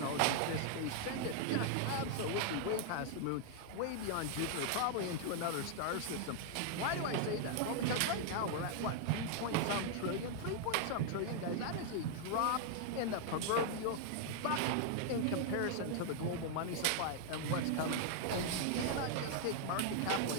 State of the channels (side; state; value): both; different; correlation 0.00